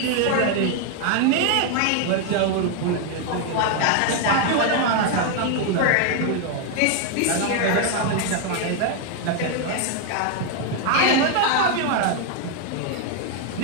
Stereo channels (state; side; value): different; both; correlation 0.01